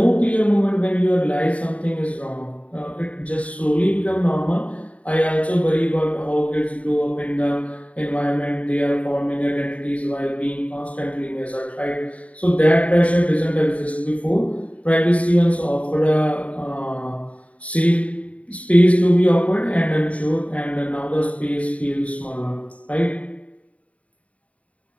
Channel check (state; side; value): late; right; 0.066 ms